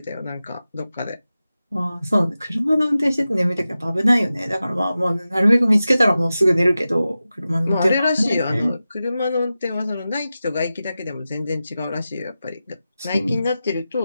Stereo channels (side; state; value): both; inverted; correlation -0.93